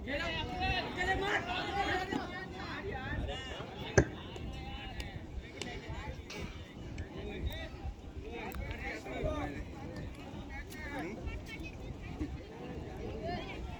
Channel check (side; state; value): both; identical; correlation 1.00